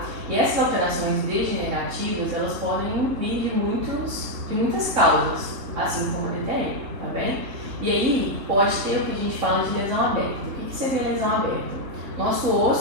E essas alterações degenerativas, elas podem vir de muitas causas, assim como a DTM, tá bem? E aí pode ter o que a gente fala de lesão aberta. O que seria lesão aberta? Nosso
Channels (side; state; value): left; late; 3.6 ms